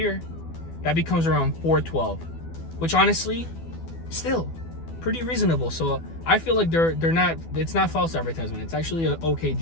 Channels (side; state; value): right; late; 12 ms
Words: that becomes around $412, which honestly, still pretty reasonable. So I feel like it's not false advertisement. It's actually an okay